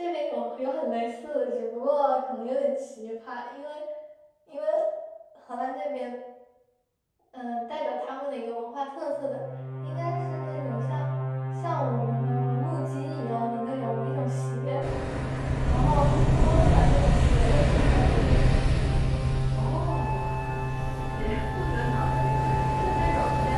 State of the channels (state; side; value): identical; both; correlation 1.00